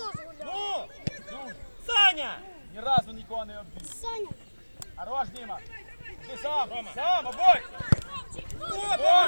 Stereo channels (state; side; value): inverted; both; correlation -1.00